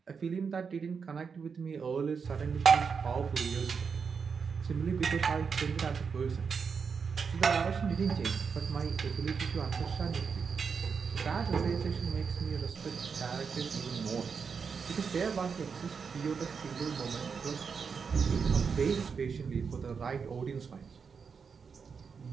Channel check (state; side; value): quieter; left; 5.9 dB